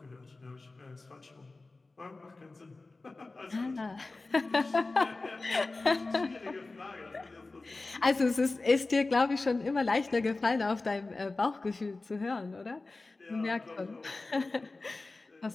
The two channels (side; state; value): right; quieter; 3.4 dB